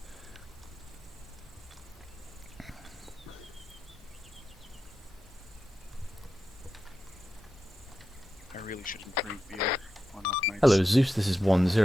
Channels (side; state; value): both; normal; correlation 0.90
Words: I really shouldn't drink beer on off nights. Hello, Zeus. This is 1-0,